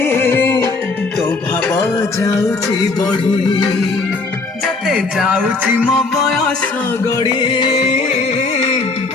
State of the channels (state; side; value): quieter; right; 3.8 dB